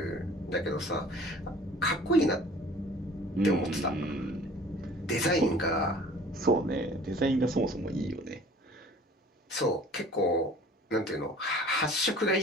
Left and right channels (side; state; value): both; normal; correlation 0.48